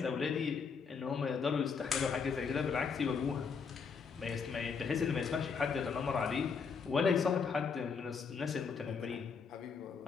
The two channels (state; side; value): quieter; right; 5.7 dB